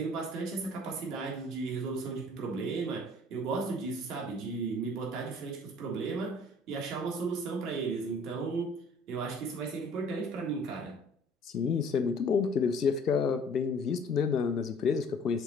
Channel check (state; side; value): normal; both; correlation 0.53